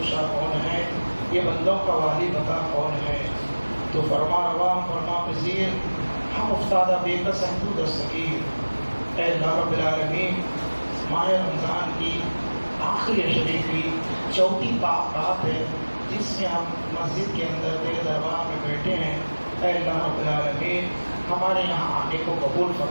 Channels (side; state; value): both; inverted; correlation -1.00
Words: کشا کون ہے؟ یہ بندوں کا والی بتا کون ہے؟ تو فرما روا، فرما پذیر، ہم افتادہ بے کس ہیں، تو دستگیر. اے اللہ رب العالمین، ماہ رمضان کی آخری شبی کی چوتھی رات ہے جس میں ہم مسجد کے اندر تیرے دربار میں بیٹھے ہیں. اے اللہ رب العالمین، ہمارے یہاں آنے کو قبول